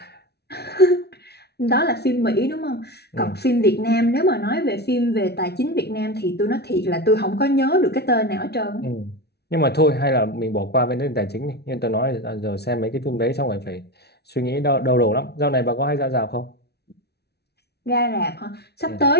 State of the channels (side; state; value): right; late; 0.48 ms